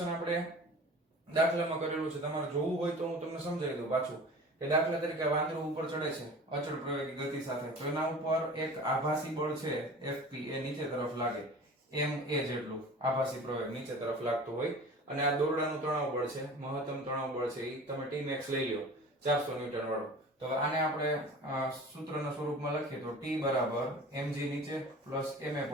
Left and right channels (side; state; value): both; normal; correlation 0.40